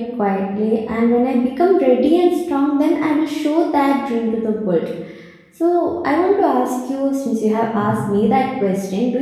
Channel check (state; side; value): identical; both; correlation 1.00